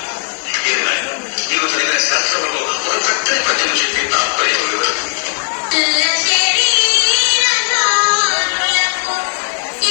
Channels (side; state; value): right; silent; 65 dB below the other